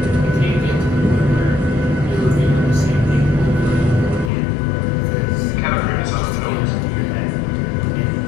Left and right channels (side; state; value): right; drops out; at 4.3 s